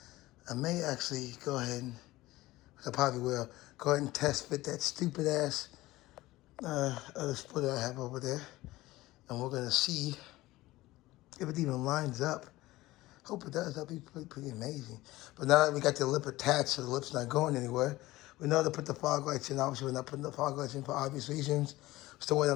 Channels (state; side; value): quieter; right; 18.1 dB